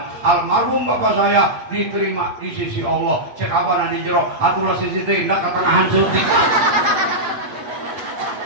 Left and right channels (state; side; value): late; left; 8.7 ms